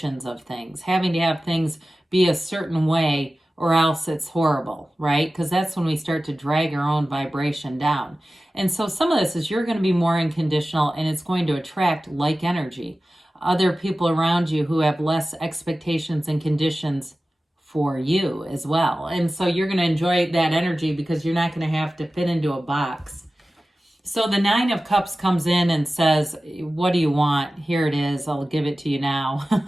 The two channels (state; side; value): normal; both; correlation 0.95